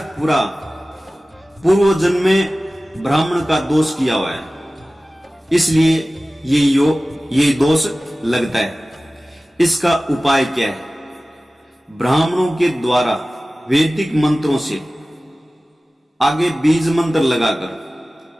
पुरा, पूर्व जन्म में ब्राह्मण का दोष किया हुआ है, इसलिए ये दोष लगता है। इसका उपाय क्या है? ब्राह्मणों के द्वारा वैदिक मंत्रों से आगे बीज मंत्र लगाकर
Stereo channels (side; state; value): both; normal; correlation 0.97